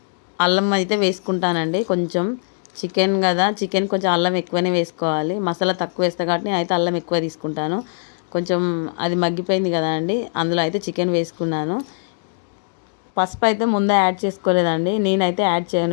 అల్లం అయితే వేసుకుంటానండి. కొంచెం చికెన్ కదా, చికెన్ కొంచెం అల్లం ఎక్కువనే వేసుకోవాలి. మసాలా తక్కువ వేస్తా కాబట్టి నేనైతే అల్లం ఎక్కువ తీసుకుంటాను. కొంచెం అది మగ్గిపోయింది కదా అండి, అందులో అయితే చికెన్ వేసుకున్నాను. పసుపు అయితే ముందే యాడ్ చేసుకోలేదండి, నేనైతే యాడ్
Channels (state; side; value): silent; right; digital silence